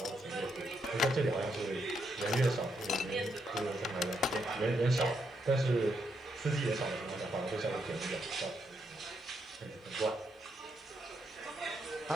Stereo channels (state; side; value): normal; both; correlation 0.79